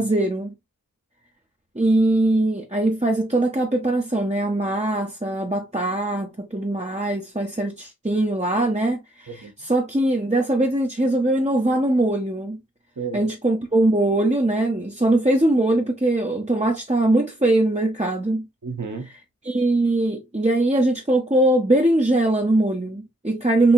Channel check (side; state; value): both; normal; correlation 0.73